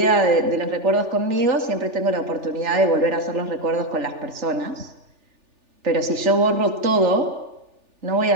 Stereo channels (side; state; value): left; late; 3.4 ms